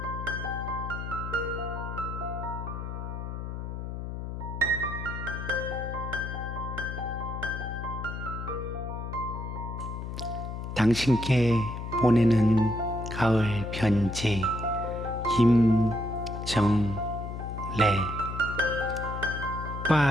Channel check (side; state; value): left; noise; hum, 6 dB below the sound